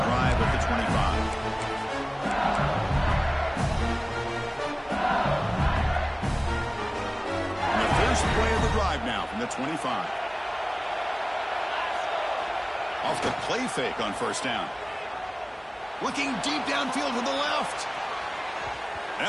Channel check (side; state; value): both; identical; correlation 1.00